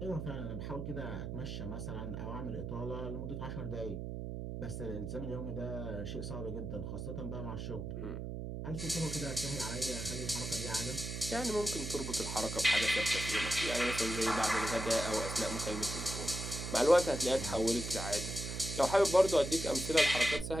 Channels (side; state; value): right; noise; hum, 5 dB below the sound